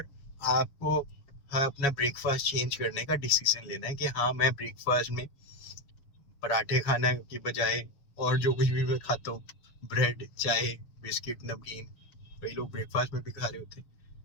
आपको अपना ब्रेकफास्ट चेंज करने का डिसीजन लेना है कि हाँ, मैं ब्रेकफास्ट में पराठे खाने की बजाय और जो कुछ भी मैं खाता हूँ, ब्रेड, चाय, बिस्किट, नमकीन, कई लोग ब्रेकफास्ट में भी खा रहे होते हैं,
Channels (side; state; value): right; late; 7.1 ms